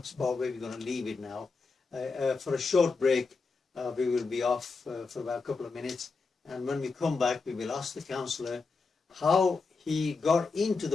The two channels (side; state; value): right; quieter; 4.3 dB